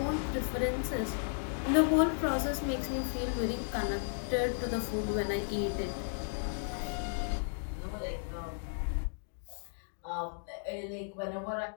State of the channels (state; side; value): silent; right; 55 dB below the other